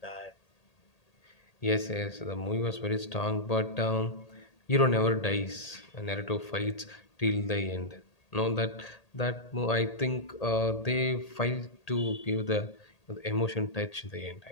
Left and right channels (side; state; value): right; late; 1.8 ms